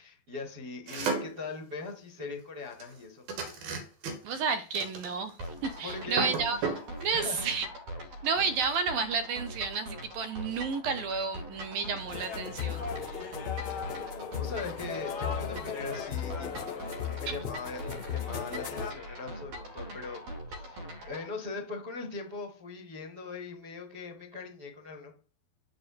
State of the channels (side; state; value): left; late; 12 ms